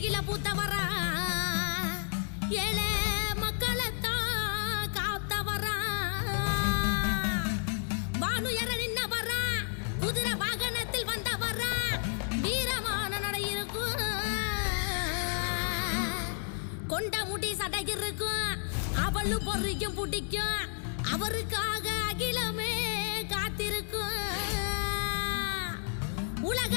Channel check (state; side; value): silent; right; digital silence